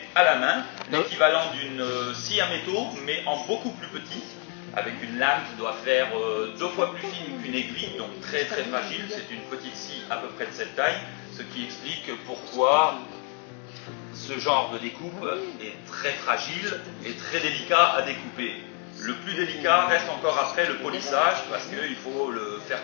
à la main, l'équivalent d'une scie à métaux, mais en beaucoup plus petit, avec une lame qui doit faire 2 fois plus fine qu'une aiguille, donc très très fragile. C'est une petite scie à peu près de cette taille, ce qui explique pourquoi ce genre de découpe est très fragile et très délicat à découper. Le plus délicat reste encore après le polissage, parce qu'il faut le faire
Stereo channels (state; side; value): quieter; right; 38.4 dB